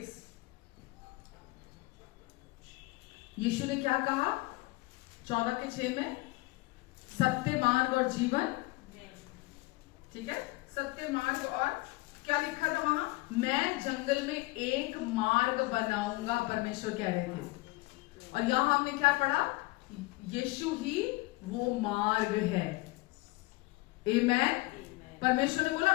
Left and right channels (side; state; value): right; quieter; 22.1 dB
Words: यीशु ने क्या कहा 14:6 में? सत्य, मार्ग और जीवन। ठीक है, सत्य, मार्ग, और क्या लिखा था वहां? मैं जंगल में एक मार्ग बनाऊंगा, परमेश्वर कह रहे थे। और यहां हमने क्या पढ़ा? यीशु ही वो मार्ग है। आमेन। परमेश्वर ने बोला